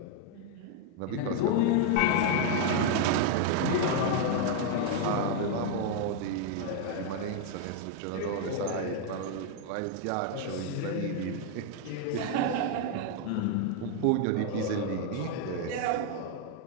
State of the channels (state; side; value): different; both; correlation 0.00